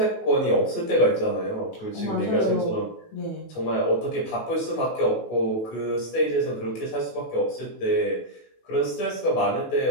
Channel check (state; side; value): late; right; 18 ms